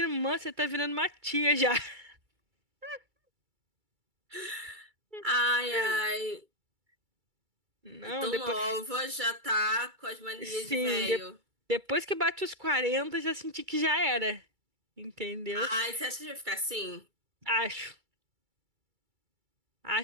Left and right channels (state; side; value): late; left; 2.3 ms